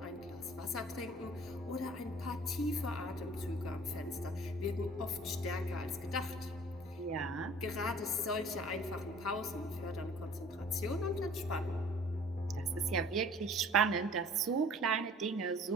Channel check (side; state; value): both; normal; correlation 0.50